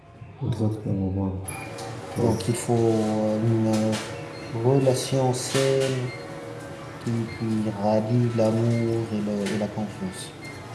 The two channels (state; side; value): identical; both; correlation 1.00